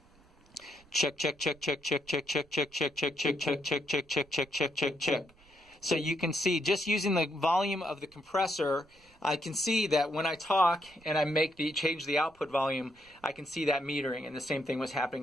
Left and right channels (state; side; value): noise; right; rumble, 29 dB below the sound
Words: Check. So you can see, just using the volume of the compressor, I can see that when I talk and I change the output volume, I can see that metering, and the same thing was happening